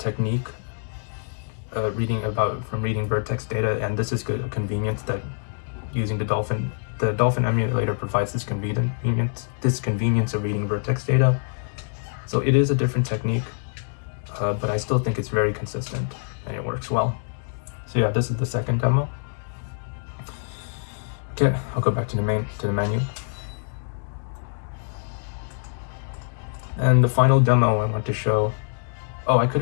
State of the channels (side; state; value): right; silent; digital silence